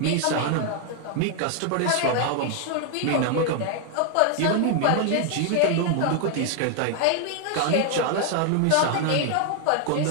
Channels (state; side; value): different; both; correlation 0.00